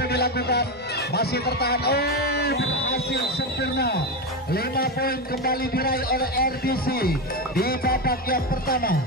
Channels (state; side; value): normal; both; correlation 0.14